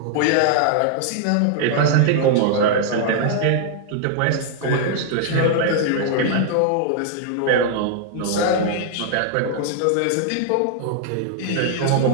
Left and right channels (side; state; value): both; different; correlation -0.01